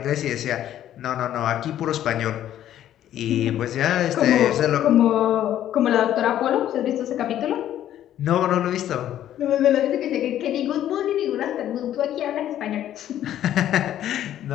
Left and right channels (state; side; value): quieter; right; 11.7 dB